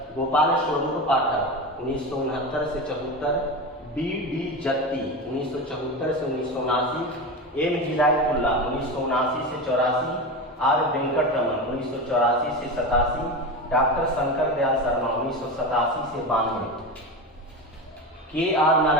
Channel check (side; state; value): both; normal; correlation 0.23